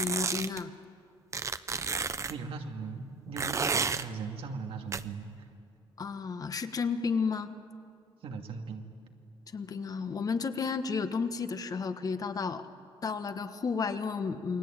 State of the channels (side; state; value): both; normal; correlation 0.49